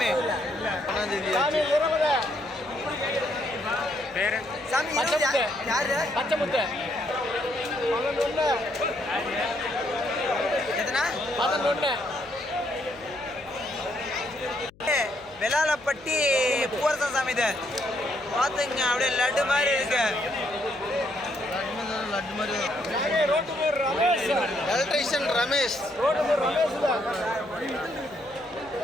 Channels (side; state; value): left; noise; hum, 27 dB below the sound